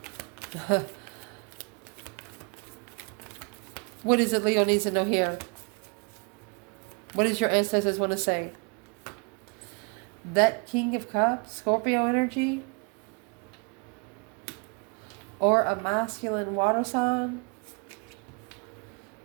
What is it Leo needs to know here? What does your ancestors want to say? That King of Cups, Scorpio energy, or a masculine water sign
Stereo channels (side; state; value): left; quieter; 34.7 dB